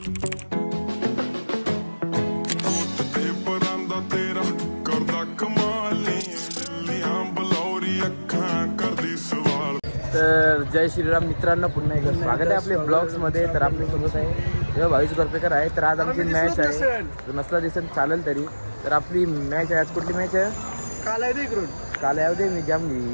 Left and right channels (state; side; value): inverted; both; correlation -1.00